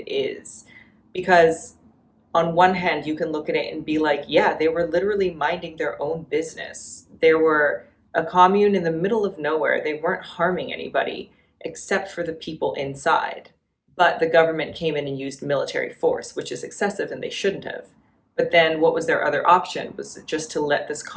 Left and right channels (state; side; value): identical; both; correlation 1.00